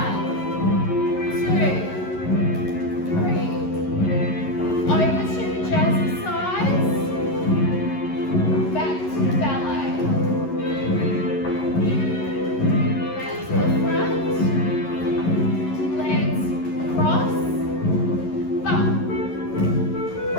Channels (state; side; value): late; right; 11 ms